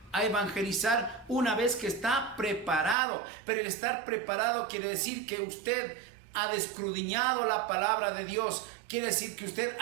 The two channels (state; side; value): drops out; left; at 3.0 s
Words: a evangelizar una vez que está preparado. Pero el estar preparado quiere decir que usted ha escudriñado la palabra de Dios. Quiere decir que usted